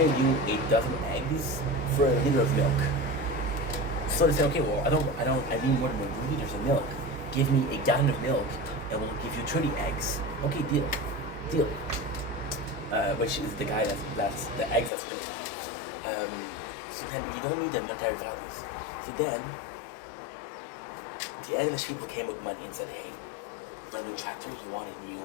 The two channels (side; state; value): right; drops out; at 14.9 s